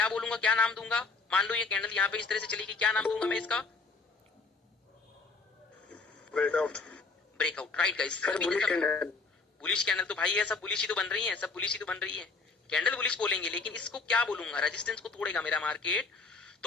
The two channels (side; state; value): right; quieter; 4.1 dB